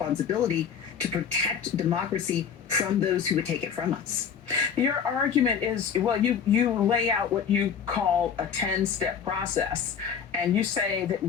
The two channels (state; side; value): quieter; right; 7.2 dB